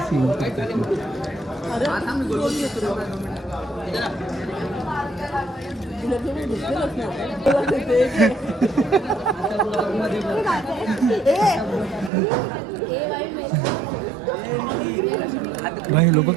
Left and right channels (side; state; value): left; drops out; at 12.1 s